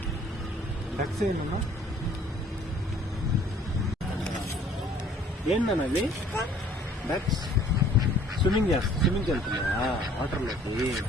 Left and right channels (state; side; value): normal; both; correlation 0.56